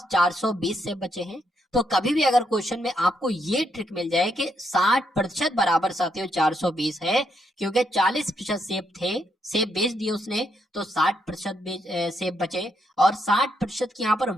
420 सेब बचे हैं। तो कभी भी अगर क्वेश्चन में आपको ये ट्रिक मिल जाए कि 60% बराबर साथियों 420 है, क्योंकि 40% सेब थे, सेब बेच दिए उसने, तो 60% सेब बचे और 60% की यहाँ पर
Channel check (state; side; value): normal; both; correlation 0.77